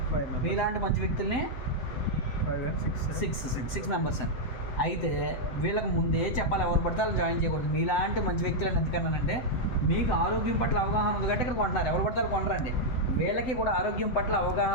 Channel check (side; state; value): right; late; 7.8 ms